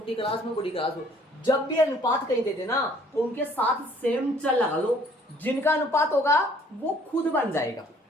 क्लास में बड़ी क्लास हो, जब भी अनुपात कहीं दे देना तो उनके साथ सेम चल लगा लो, जिनका अनुपात होगा वो खुद बन जाएगा।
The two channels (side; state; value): both; normal; correlation 0.59